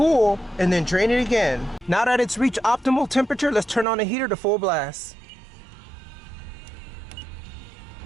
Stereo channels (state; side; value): drops out; left; at 3.9 s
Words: and then drain it again. Now that it's reached optimal temperature, let's turn on the heater to full blast.